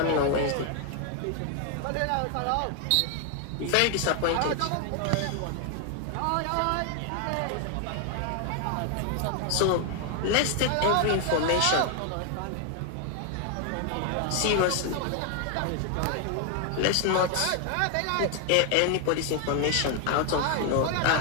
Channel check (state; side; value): different; both; correlation 0.00